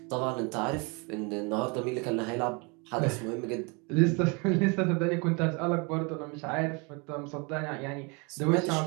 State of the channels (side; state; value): left; quieter; 30.8 dB